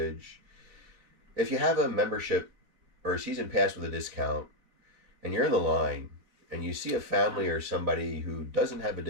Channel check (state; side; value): late; left; 3.9 ms